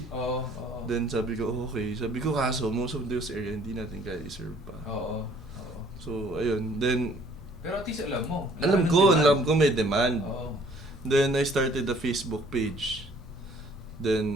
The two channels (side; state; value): both; normal; correlation 0.58